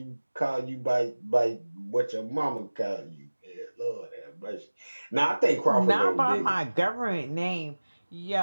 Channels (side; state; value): both; inverted; correlation -1.00